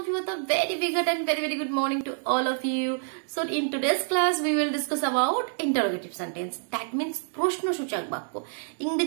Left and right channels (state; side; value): silent; left; digital silence